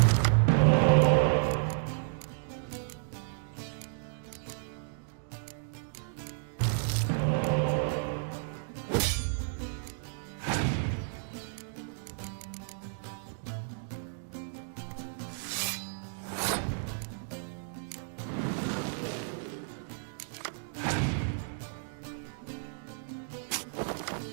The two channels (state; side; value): silent; left; digital silence